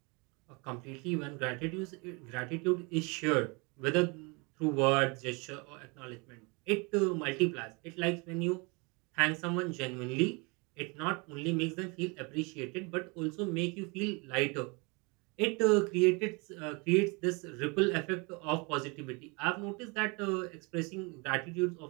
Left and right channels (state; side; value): quieter; left; 29.6 dB